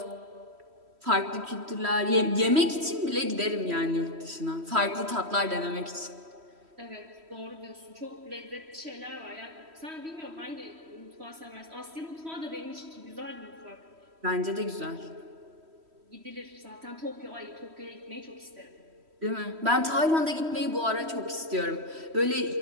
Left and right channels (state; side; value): late; left; 3.1 ms